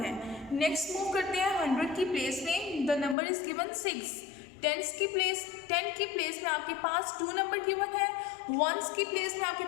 है। नेक्स्ट मूव करते हैं 100 की प्लेस में, द नंबर इज गिवन 6। 10 की प्लेस में आपके पास 2 नंबर गिवन है। 1s की प्लेस में आपके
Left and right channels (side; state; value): right; drops out; at 3.2 s